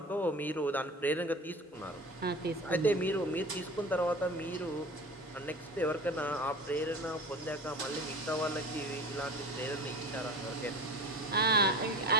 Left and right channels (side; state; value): both; normal; correlation 0.37